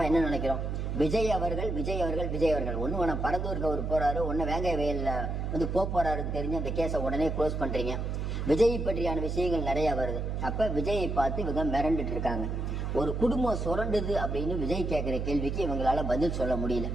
என்ன நினைக்கிறோம், விஜய் அவர்கள் ஒண்ணு வேணா பரந்தூருக்கு அவர் போறாரு, ஒன்னு வேங்காய வயல்ல போறாருன்னு தெரிஞ்சு அந்த கேஸை உடனே க்ளோஸ் பண்றீங்க. விஜய் பற்றியான விஷயங்கள் நிறைய வருது. அப்ப விஜயை பார்த்து இவங்க மிரண்டுட்டு இருக்காங்க. ஒரு குடும்பம் சுரண்டுது அப்படின்னு விஜய் கேட்கிற கேள்விக்கு இவங்களால பதில் சொல்ல முடியல.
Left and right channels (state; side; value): noise; right; hum, 2 dB below the sound